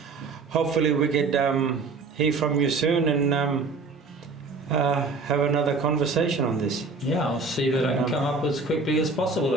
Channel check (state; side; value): quieter; left; 4.1 dB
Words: hopefully we could hear from you soon and have another conversation on this. I'll see that I can come up as quickly as possible